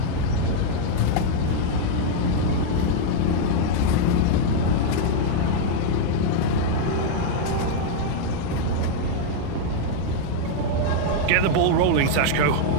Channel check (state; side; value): different; both; correlation 0.00